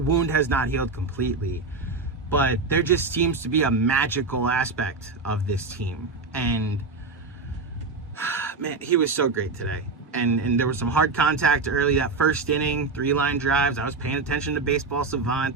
has not healed completely, but there just seems to be a magical aspect of this team. And man, he was so great today. And there was some hard contact early, that first inning, 3-line drives. I was paying attention to Baseball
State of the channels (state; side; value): quieter; left; 4.0 dB